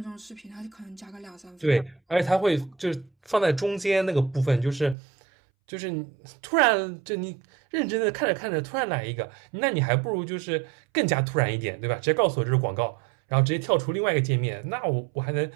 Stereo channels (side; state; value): left; drops out; at 5.0 s